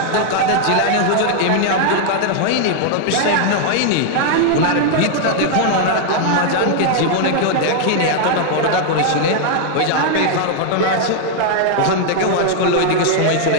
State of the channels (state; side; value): different; both; correlation 0.00